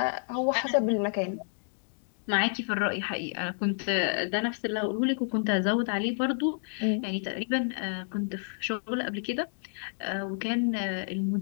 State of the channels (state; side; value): silent; right; digital silence